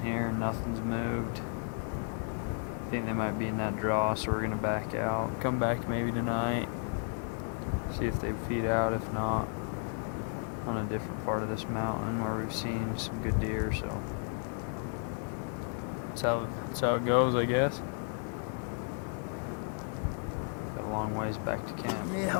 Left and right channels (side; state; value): right; silent; 56 dB below the other